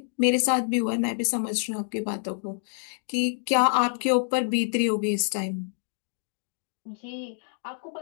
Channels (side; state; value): right; silent; digital silence